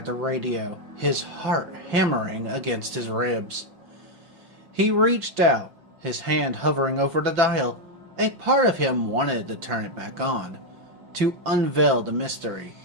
the radio, his heart hammering against his ribs. He reached out, his hand hovering over the dial. A part of him wanted to turn it back on, to unveil the mystery,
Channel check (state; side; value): late; left; 5.5 ms